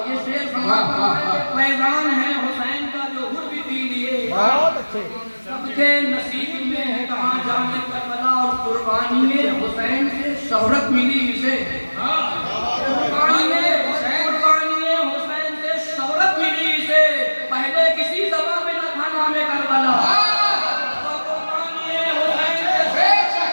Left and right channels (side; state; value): both; inverted; correlation -1.00